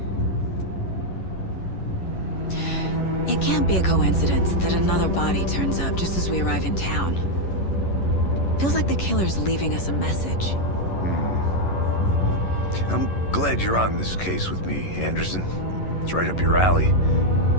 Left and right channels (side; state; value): right; late; 11 ms